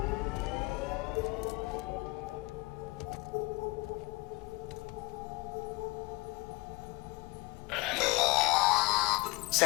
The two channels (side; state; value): right; quieter; 24.2 dB